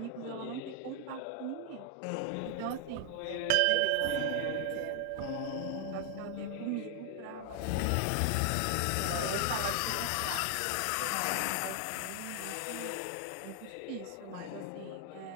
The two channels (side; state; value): both; different; correlation 0.00